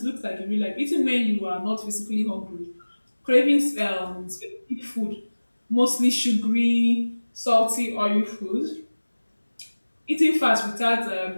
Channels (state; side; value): inverted; both; correlation -1.00